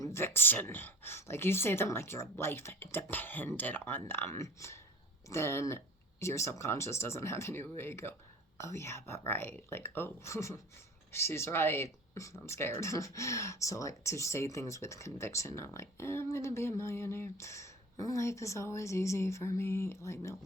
like you say them like your life depended on them, then your subconscious doesn't have any way to go, oh yeah, but right. Like, oh, she's right. I'm scared. So like to say things with conviction, not like, I'm going to be a millionaire. Life is always easy for me. Like, no,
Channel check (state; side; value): normal; both; correlation 0.42